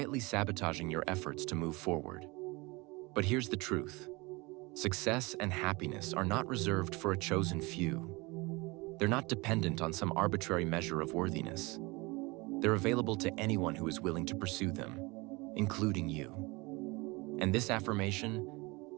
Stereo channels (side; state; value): left; quieter; 24.8 dB